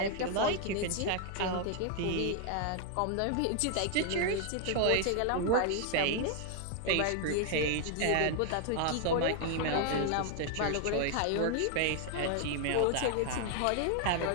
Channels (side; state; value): both; different; correlation 0.00